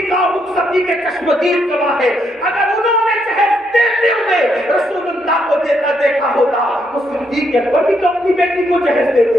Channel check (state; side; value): normal; both; correlation 0.76